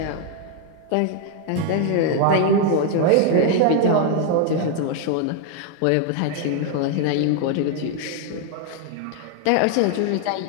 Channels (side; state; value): both; different; correlation 0.00